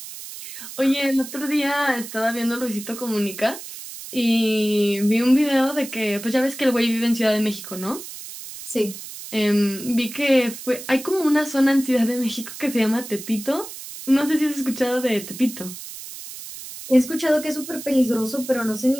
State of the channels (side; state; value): right; noise; hiss, 12 dB below the sound